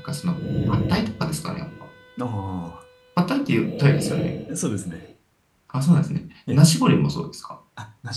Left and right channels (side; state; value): both; identical; correlation 1.00